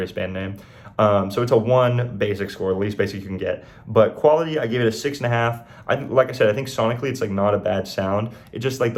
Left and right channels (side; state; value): both; identical; correlation 1.00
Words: band name. So it's a 1 basic score, the least basic you can get. But quality, I gave it a 6.5. Like I said, I think sonically it's like not a bad sound. It's just like